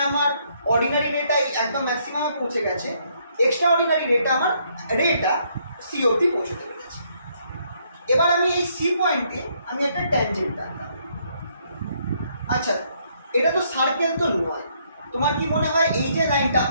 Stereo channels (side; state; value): both; inverted; correlation -0.70